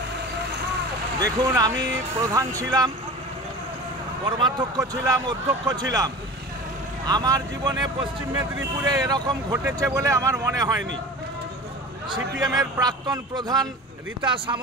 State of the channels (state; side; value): normal; both; correlation 0.35